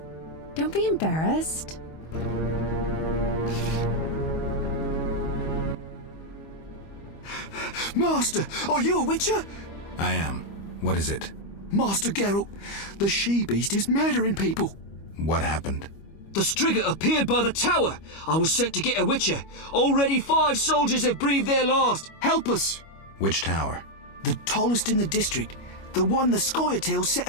Don't be embarrassed. Master, are you a Witcher? I am. What is it? Master Geralt, the she-beast is murdering people. What happened? The Striga appeared by the tower. I was sent to get a Witcher. Already 5 soldiers have breathed their last. Help us! Which tower? The tallest in the district. The one the Scoia'tael set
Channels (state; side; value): late; right; 25 ms